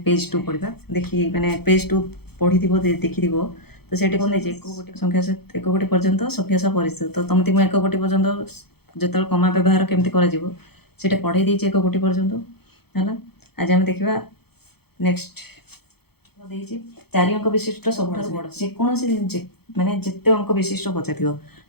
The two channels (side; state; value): right; late; 0.96 ms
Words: पेज 2 पढ़ा देखी मैंने पेज 2 पढ़ी देखी तो से कौन एक गोटी संख्या एक गोटी पर्यंत संख्या सह परिचित तो तुमती मुझे एक गोटी पर्यंत जो कमा व्यवहार केमती कर पढ़े देती एक गोटी पर्यंत है। आज आम देखा नेक्स्ट चारि अंक विशिष्ट सब बड़ जेकोसी माने जिते अंक विशिष्ट पचार